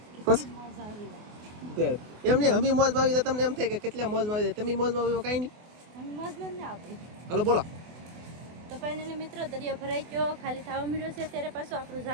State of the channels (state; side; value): late; left; 24 ms